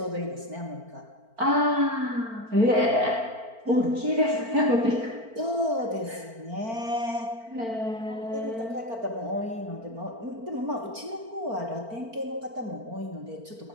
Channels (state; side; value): late; left; 4.4 ms